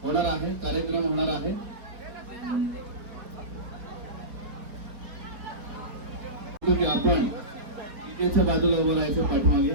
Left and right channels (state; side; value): late; left; 4.3 ms